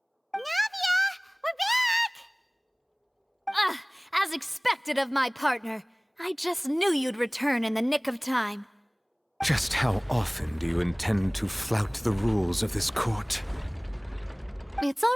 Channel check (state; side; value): identical; both; correlation 1.00